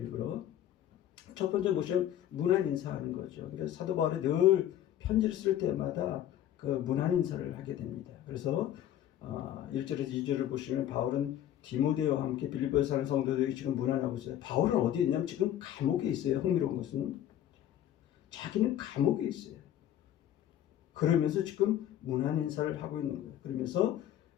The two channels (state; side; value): quieter; right; 11.5 dB